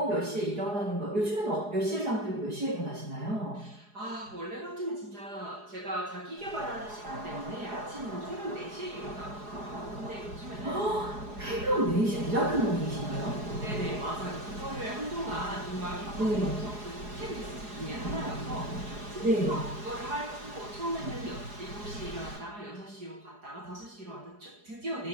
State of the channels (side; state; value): left; late; 4.8 ms